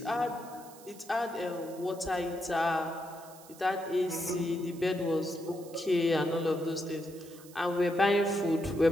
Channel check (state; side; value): noise; right; hiss, 20 dB below the sound